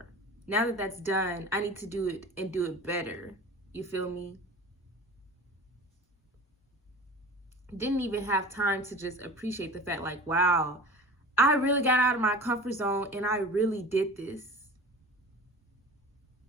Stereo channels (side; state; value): both; normal; correlation 0.37